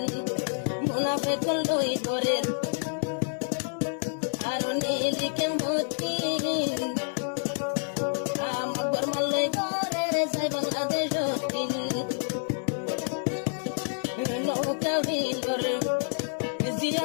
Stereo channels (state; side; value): silent; right; digital silence